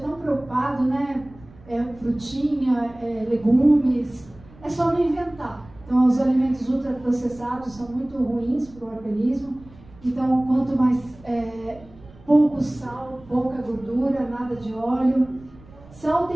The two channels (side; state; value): right; noise; rumble, 23 dB below the sound